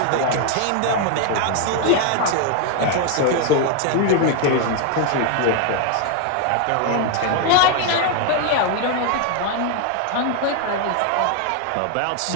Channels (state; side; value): different; both; correlation 0.01